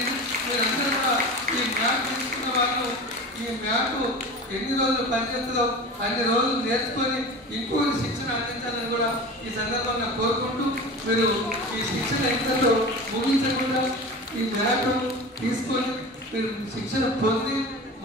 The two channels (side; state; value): both; normal; correlation 0.33